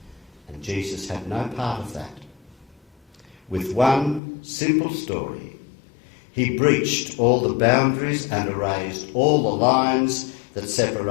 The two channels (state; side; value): drops out; right; at 4.2 s